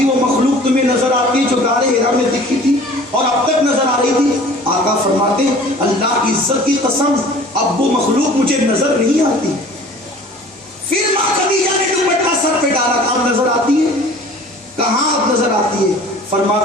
وہ مخلوق تمہیں نظر آتی ہے جو غار حرا میں دکھی تھی اور اب تک نظر آ رہی تھی؟ آقا فرماتے اللہ کی عزت کی قسم اب وہ مخلوق مجھے نظر نہیں آتی۔ پھر ماں خدیجہ نے دوپٹہ سر پہ ڈالا، کہاں نظر آتی ہے؟ کہاں اب نظر آتی ہے؟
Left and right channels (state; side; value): normal; both; correlation 0.47